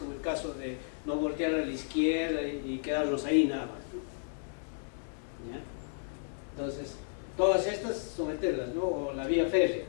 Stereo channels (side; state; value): right; silent; digital silence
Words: el caso de no voltear a la izquierda y quedarnos ahí nada más, ¿no? ¿Ya? Entonces, todas estas someterlas, ¿no? O la vía férrea,